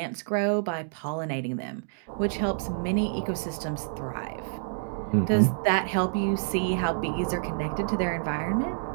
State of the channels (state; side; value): silent; left; digital silence